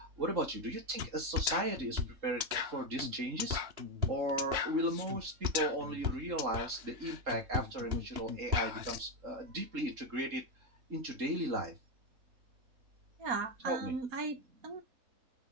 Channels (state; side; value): late; left; 3.7 ms